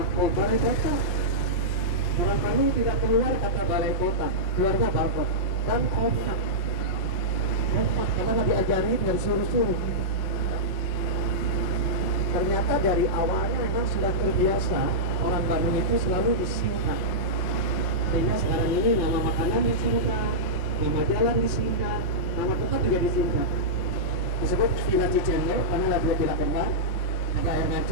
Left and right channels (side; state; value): right; late; 5.6 ms